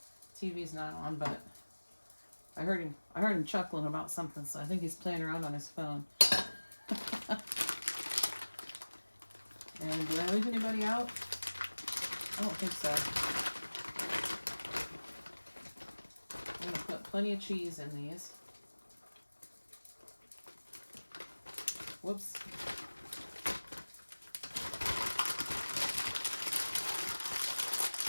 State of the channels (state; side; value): inverted; both; correlation -1.00